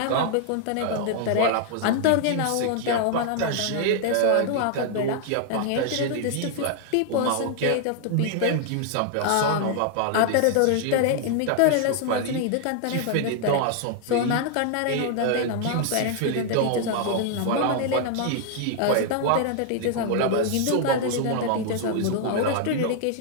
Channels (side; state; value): both; different; correlation 0.00